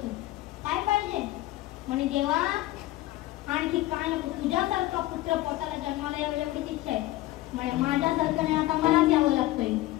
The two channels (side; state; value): right; quieter; 16.8 dB